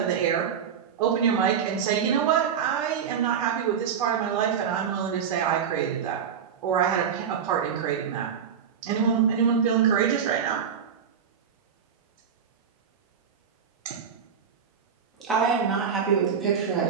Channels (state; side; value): quieter; left; 7.5 dB